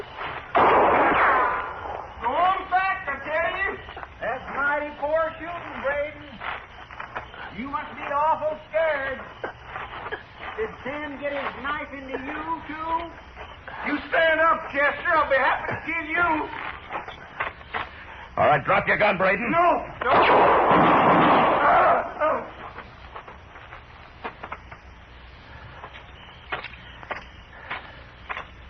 Go on back, I tell you. That's mighty poor shooting, Braden. You must be awful scared. Did Sam get his knife into you, too? You stand up, Chester. I'll be happy to kill you. All right, drop your gun, Braden. No.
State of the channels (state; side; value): identical; both; correlation 1.00